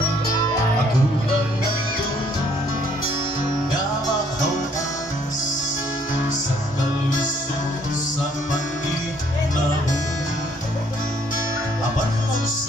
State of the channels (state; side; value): normal; both; correlation 0.64